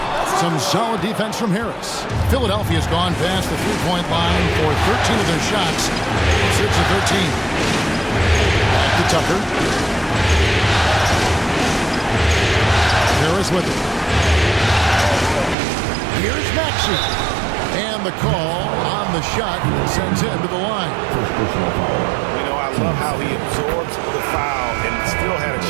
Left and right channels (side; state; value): left; drops out; at 15.6 s